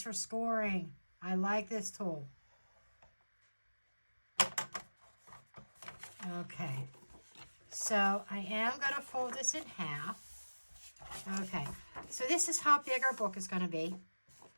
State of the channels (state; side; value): inverted; both; correlation -1.00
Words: for scoring. I like this tool. Okay. So I am going to fold this in half. Okay. So this is how big our book is going to be.